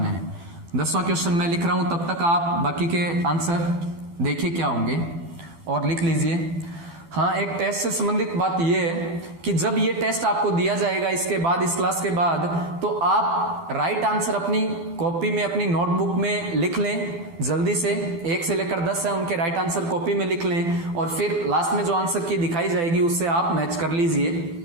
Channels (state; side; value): late; left; 12 ms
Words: है। 10वां क्वेश्चन मैं लिख रहा हूं, तब तक आप बाकी के आंसर देखिए क्या होंगे और लिख लीजिए। हाँ, एक टेस्ट से संबंधित बात यह है कि जब ये टेस्ट आपको दिया जाएगा इसके बाद, इस क्लास के बाद, तो आप राइट आंसर अपनी कॉपी में, अपनी नोटबुक में लिख लें जल्दी से। 1 से लेकर 10 है उनके राइट आंसर कॉपी में लिख लें और फिर लास्ट में जो आंसर की दिखाई जाएगी उससे आप मैच कर लीजिए।